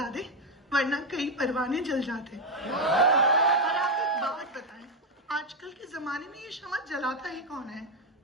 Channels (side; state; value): both; normal; correlation 0.06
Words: वरना कई परवाने जल जाते। और आप एक बात बताएं, आजकल के जमाने में ये शमा जलाता ही कौन है?